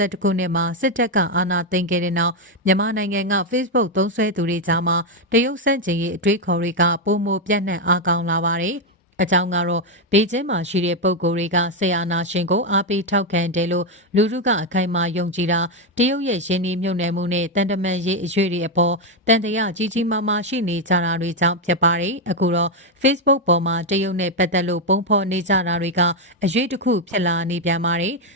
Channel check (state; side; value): normal; both; correlation 0.04